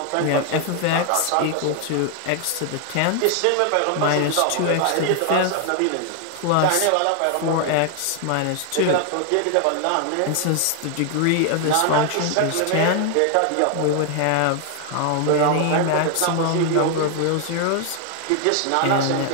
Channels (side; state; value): both; different; correlation 0.00